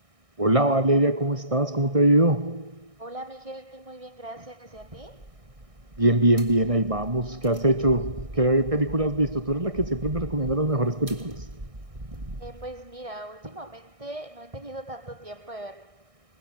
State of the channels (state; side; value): late; left; 1.6 ms